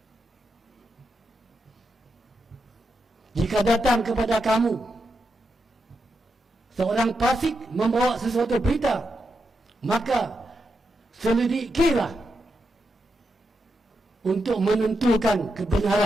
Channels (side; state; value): both; normal; correlation 0.85